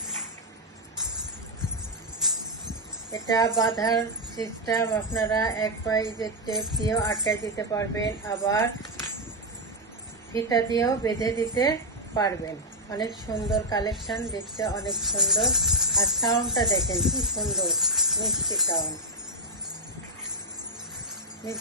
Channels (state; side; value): normal; both; correlation 0.01